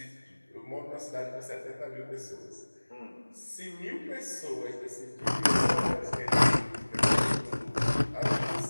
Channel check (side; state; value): both; inverted; correlation -1.00